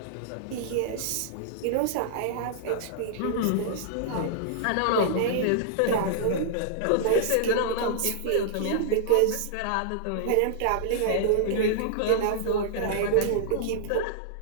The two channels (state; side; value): different; both; correlation -0.01